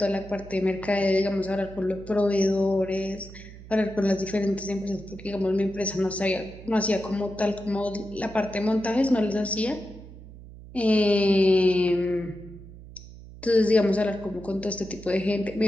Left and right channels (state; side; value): noise; right; hum, 17 dB below the sound